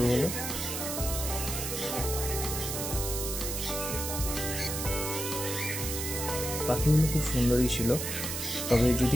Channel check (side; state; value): right; noise; hiss, 4 dB below the sound